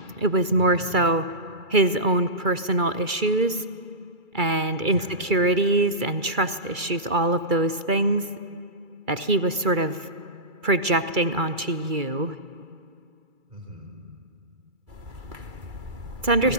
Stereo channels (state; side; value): late; left; 2.3 ms